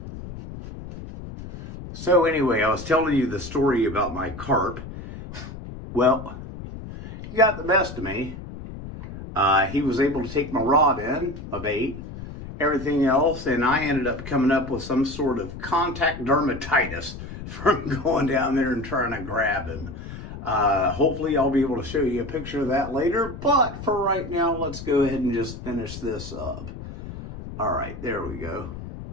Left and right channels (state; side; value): noise; left; rumble, 11 dB below the sound